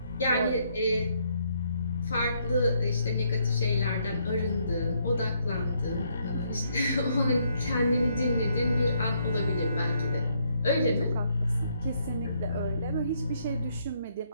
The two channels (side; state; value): both; inverted; correlation -0.72